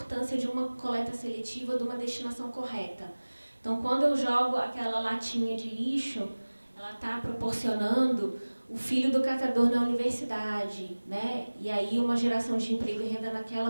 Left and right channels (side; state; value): both; inverted; correlation -1.00